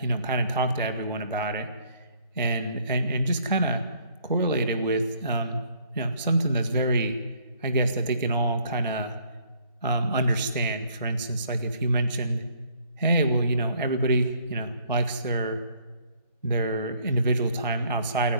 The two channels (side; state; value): both; inverted; correlation -0.63